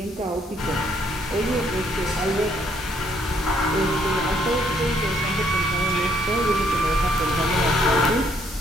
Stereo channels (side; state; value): both; normal; correlation 0.68